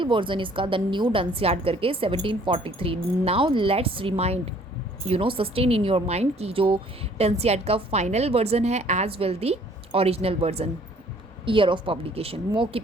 version इसका the new Dunciad करके 1743. Now let's remind, sustain in your mind कि जो Dunciad का final version है as well the original version, year of publication, mock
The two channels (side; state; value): both; normal; correlation 0.58